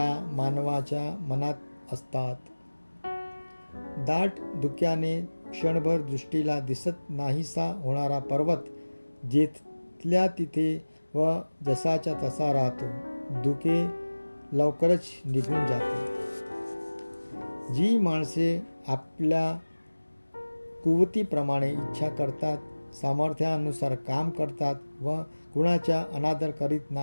मानवाच्या मनात असतात. दाट धुक्याने क्षणभर दृष्टीला दिसत नाहीसा होणारा पर्वत जिथल्या तिथे व जसाच्या तसा राहतो. धुके लवकरच निघून जाते. जी माणसे आपल्या कुवतीप्रमाणे इच्छा करतात, सामर्थ्यानुसार काम करतात व कुणाचा अनादर करीत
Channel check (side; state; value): both; inverted; correlation -1.00